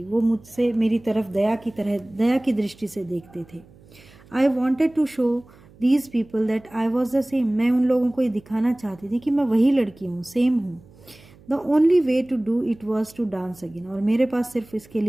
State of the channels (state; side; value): noise; right; hum, 25 dB below the sound